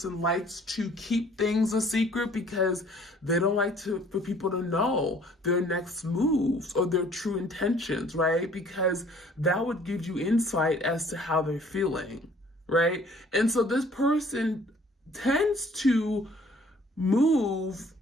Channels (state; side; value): normal; both; correlation 0.56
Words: likes to keep things a secret because they don't like for people to know their next moves or their true intentions, right? Because that would give you insight as to how they're feeling, right? And so this person tends to move